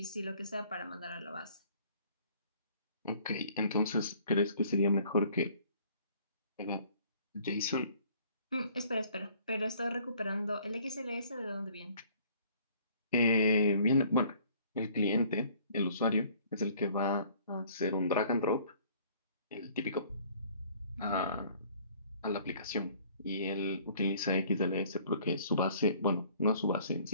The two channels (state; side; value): inverted; both; correlation -0.56